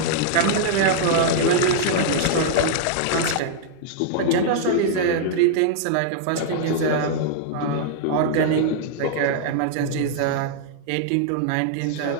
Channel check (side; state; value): both; different; correlation -0.01